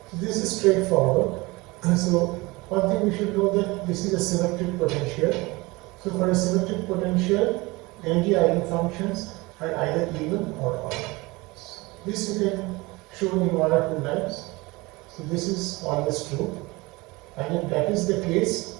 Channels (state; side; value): quieter; left; 23.2 dB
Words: So this is straightforward. So one thing we should know that this is a symmetric potential. So for a symmetric potential, energy eigenfunctions are either even or odd. This you can show in one or two lines. So this is always true. And if that is the case,